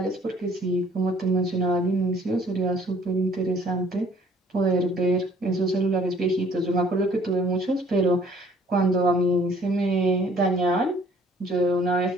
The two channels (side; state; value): both; normal; correlation 0.58